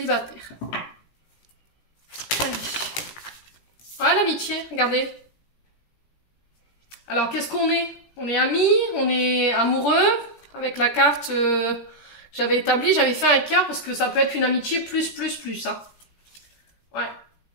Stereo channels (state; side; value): late; right; 17 ms